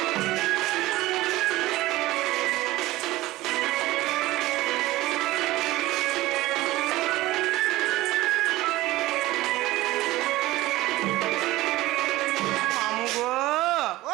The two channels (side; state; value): left; quieter; 17.8 dB